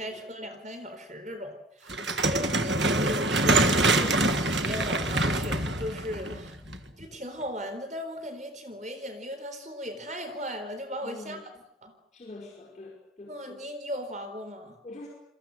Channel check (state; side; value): normal; both; correlation 0.44